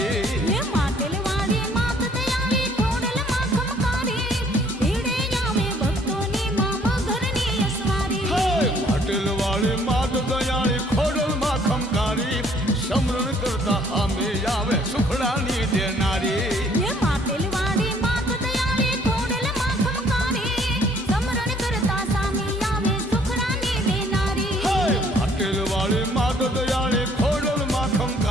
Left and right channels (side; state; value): both; normal; correlation 0.61